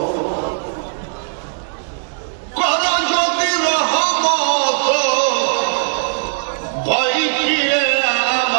কর যদি রহমত ভয় ফিরে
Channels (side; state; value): left; silent; digital silence